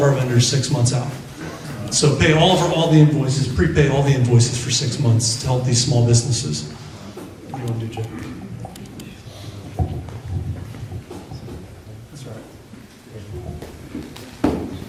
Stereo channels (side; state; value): both; identical; correlation 1.00